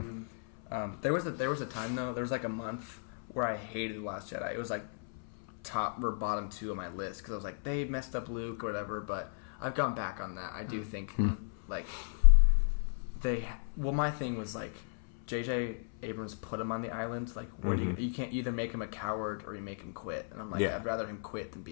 But there was a time though. There was like a month where I hated The Last Jedi. It was like top or bottom 2 on my list because I was like, they messed up Luke or whatever. But I've gone back on that. I do think like my thing was like J.J. Abrams put him on the island. Like, where do you can't either make him a coward or you make him quit. And I'm like, Yeah. I'd rather him quit than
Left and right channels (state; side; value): silent; right; 55 dB below the other